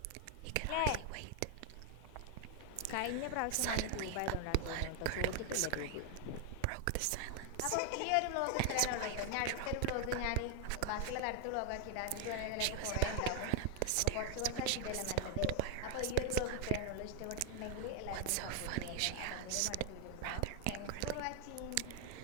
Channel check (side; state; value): both; different; correlation 0.00